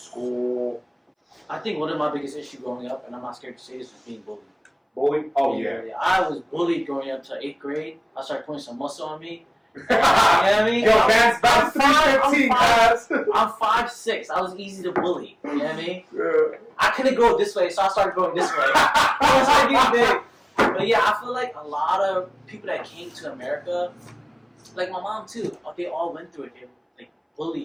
I think one of my biggest issues growing up, and I'm not scared to say this, was being bullied. Bullied? Oh yeah. I was bullied growing up to 8th grade. I started putting some muscle on me. You know what I mean? Yo, man's about 315, guys. I'm 5'6". I was easy to bully. You know what I mean? Yeah. I couldn't go this way, so I started going this way. I started getting big. But yeah, I feel like a lot of people that came to America, like my mom too, they all went through it. They like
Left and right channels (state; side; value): identical; both; correlation 1.00